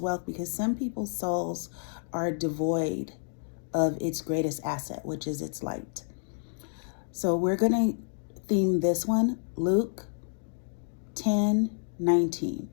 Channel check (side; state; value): right; silent; 58 dB below the other